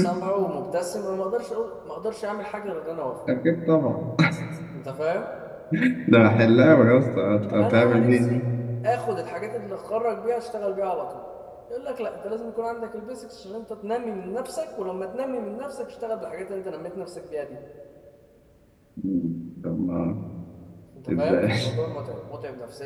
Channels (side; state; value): both; identical; correlation 1.00